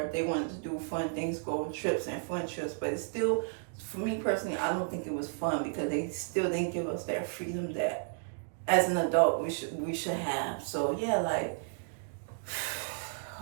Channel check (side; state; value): left; silent; digital silence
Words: if they wanted to do fun things, go on trips and fun trips. But it's still, for me personally, I don't think it was fun because they still didn't give us that freedom that as an adult we should have. So yeah, like,